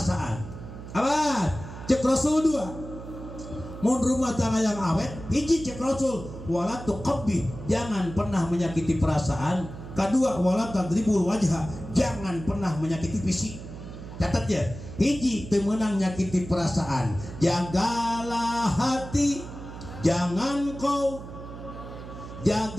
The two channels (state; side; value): noise; right; hum, 12 dB below the sound